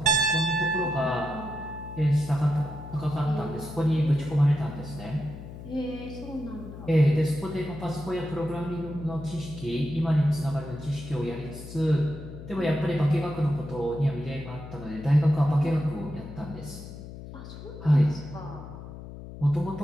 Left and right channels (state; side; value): noise; left; hum, 12 dB below the sound